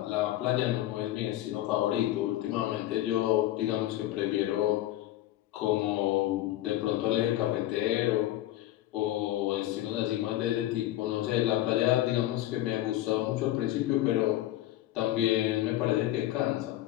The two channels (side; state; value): right; quieter; 14.6 dB